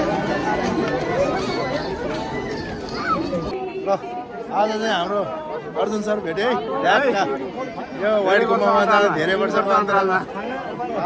ल आज चाहिँ हाम्रो अर्जुन सर भेटे है। यो व्हाइट गुम्बामा जाँदा धेरै वर्षको अन्तरालमा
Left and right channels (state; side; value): identical; both; correlation 1.00